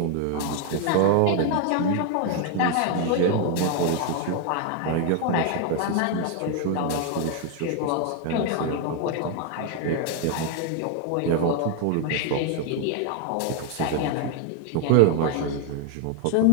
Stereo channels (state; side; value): different; both; correlation 0.00